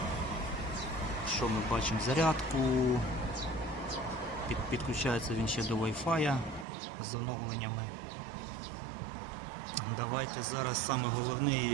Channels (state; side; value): drops out; left; at 6.7 s